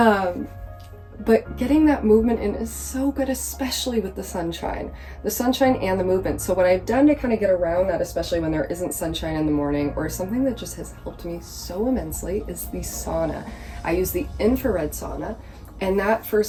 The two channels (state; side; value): identical; both; correlation 1.00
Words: But getting that movement in is so good, especially with the sunshine and the movement. So what I've done to kind of get around that, especially when there isn't sunshine in the morning, or something that just has helped me so immensely, is the sauna. I use the infrared sauna, and that,